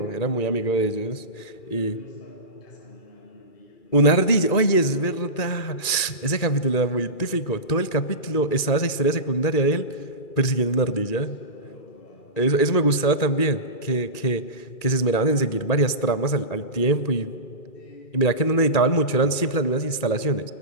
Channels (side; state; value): right; late; 2.3 ms